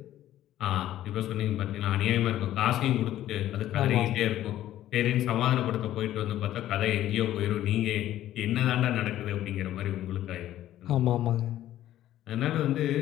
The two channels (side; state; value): right; quieter; 13.1 dB